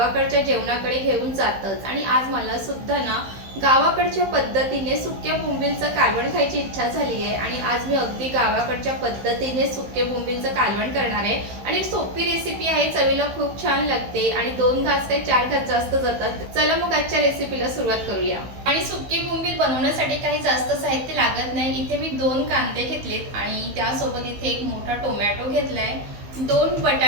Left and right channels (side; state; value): left; late; 15 ms